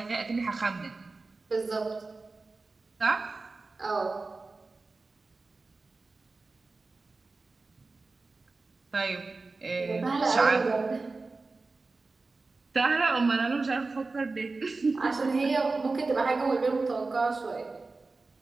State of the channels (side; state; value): left; quieter; 3.7 dB